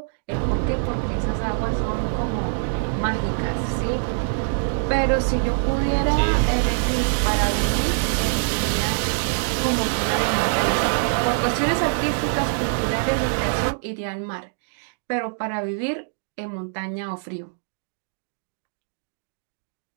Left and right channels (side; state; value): left; silent; digital silence